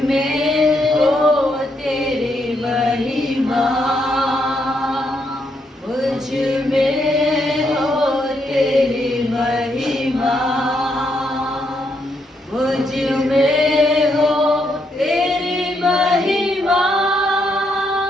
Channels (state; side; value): normal; both; correlation 0.77